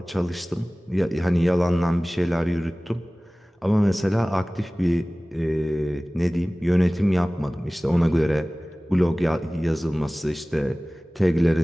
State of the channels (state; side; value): normal; both; correlation 0.98